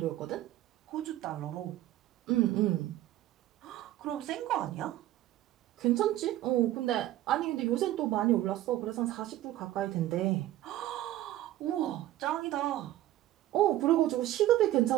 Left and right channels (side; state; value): left; quieter; 14.4 dB